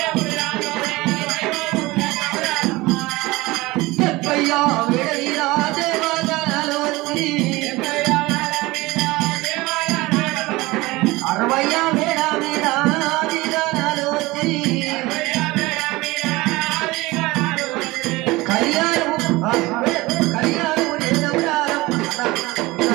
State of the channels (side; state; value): left; quieter; 21.0 dB